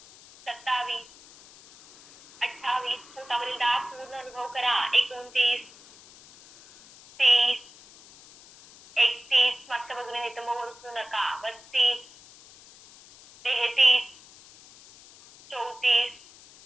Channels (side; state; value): left; noise; hiss, 22 dB below the sound